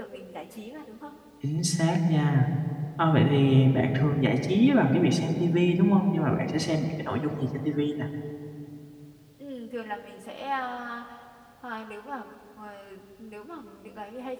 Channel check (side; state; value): both; identical; correlation 1.00